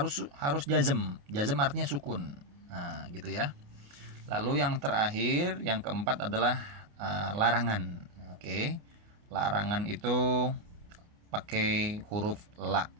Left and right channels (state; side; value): late; left; 28 ms